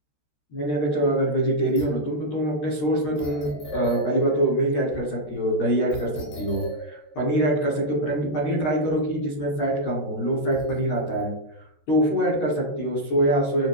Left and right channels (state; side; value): late; right; 13 ms